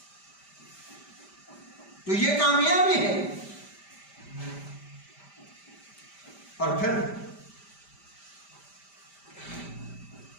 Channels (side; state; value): right; late; 5.1 ms